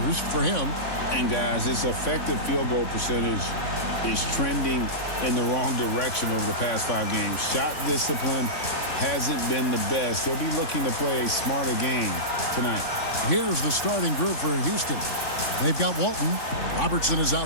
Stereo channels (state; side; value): late; right; 3.5 ms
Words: for him. And guys, his effective field goal percentage is trending in the wrong direction over the past 5 games. Shot discipline hasn't been the best. He'll be looking to play a smarter game tonight. Here's the starting group for Houston. They've got Walton. Robertson is